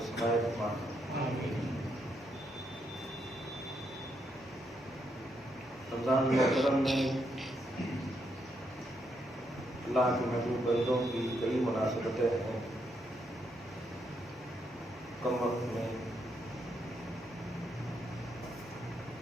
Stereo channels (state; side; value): normal; both; correlation 0.78